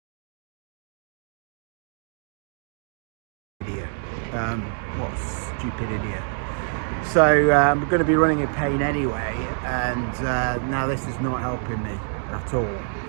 Idiot. What a stupid idiot. So I'm going to be running in pain anyway, and now this is not helping me at all.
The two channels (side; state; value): left; silent; 61 dB below the other